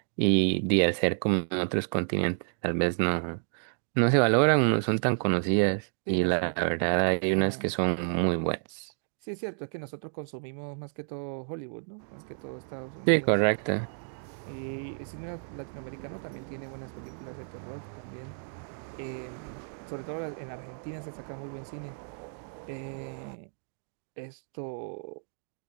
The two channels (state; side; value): silent; left; digital silence